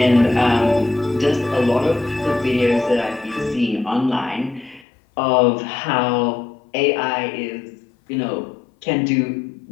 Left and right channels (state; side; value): drops out; right; at 4.9 s